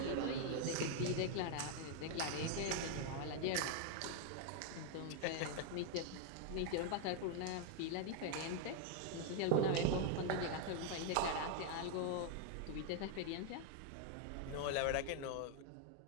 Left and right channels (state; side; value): different; both; correlation 0.00